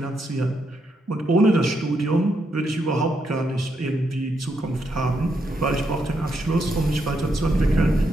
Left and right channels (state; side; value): normal; both; correlation 0.79